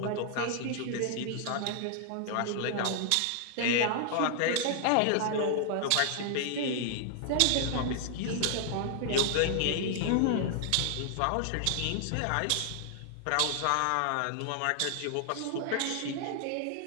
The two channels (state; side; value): different; both; correlation 0.00